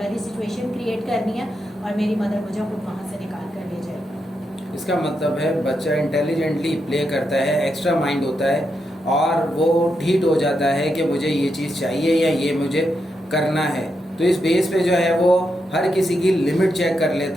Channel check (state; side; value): normal; both; correlation 0.84